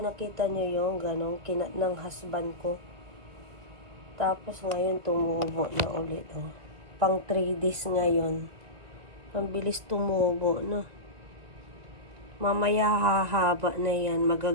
nyo yung ganong kinat ng husband ko. Tapos ngayon tumubo na ulit. Oh. Pang 3 days ngayon. Ang bilis tumubo, no? Mamaya hahaba na yan.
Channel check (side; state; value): left; late; 1.9 ms